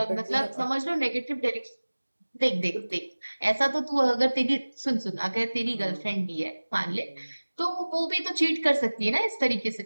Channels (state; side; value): inverted; both; correlation -1.00